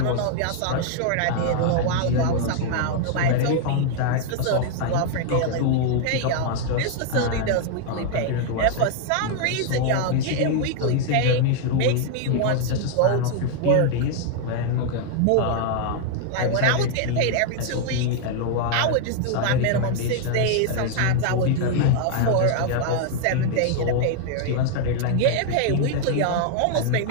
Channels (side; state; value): both; different; correlation 0.00